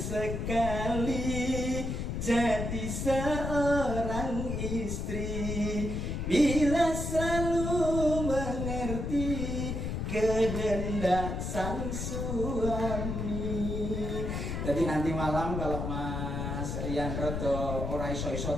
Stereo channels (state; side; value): noise; left; rumble, 3 dB below the sound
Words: jadi seorang istri bila selalu mengerti kehendak sang suami. Jadi nanti malam kalau Mas Rian Rodo ora iso